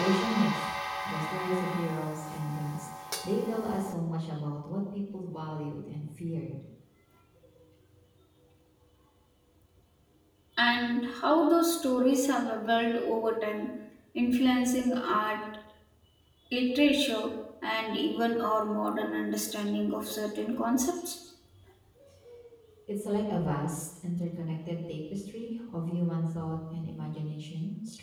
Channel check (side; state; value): both; identical; correlation 1.00